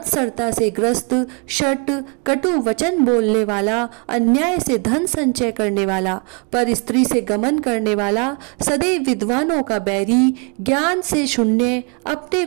से ग्रस्त शट कटु वचन बोलने वाला अन्याय से धन संचय करने वाला पर स्त्री से गमन करने वाला सदैव विद्वानों का बैरी ज्ञान से शून्य अपने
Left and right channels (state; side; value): quieter; left; 34.9 dB